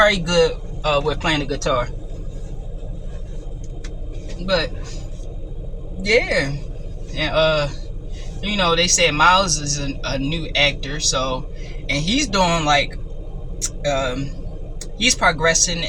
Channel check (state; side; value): identical; both; correlation 1.00